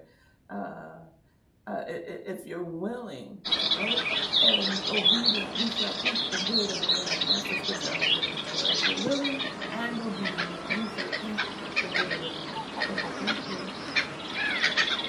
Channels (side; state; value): both; identical; correlation 1.00